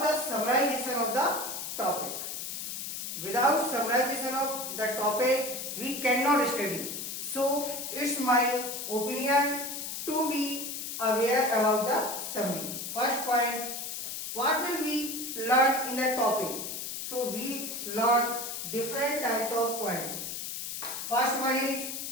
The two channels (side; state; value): left; noise; hiss, 5 dB below the sound